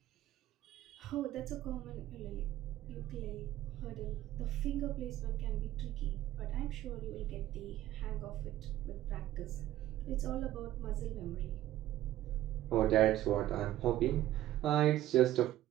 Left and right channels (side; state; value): left; quieter; 14.0 dB